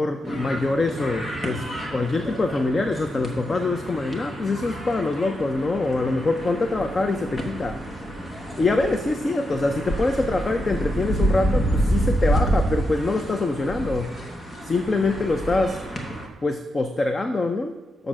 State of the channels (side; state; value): both; normal; correlation 0.86